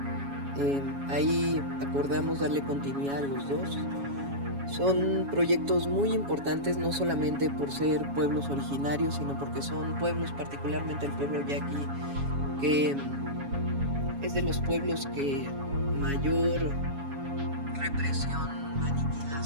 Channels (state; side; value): late; left; 7.2 ms